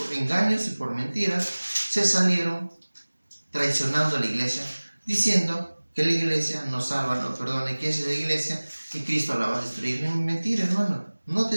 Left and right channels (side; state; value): both; inverted; correlation -1.00